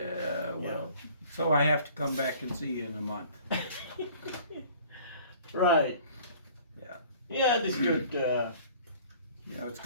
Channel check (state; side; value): inverted; both; correlation -0.51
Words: Well. So I have to come back and see you in a month. Right. Yeah. Yeah, this good. Yeah. It's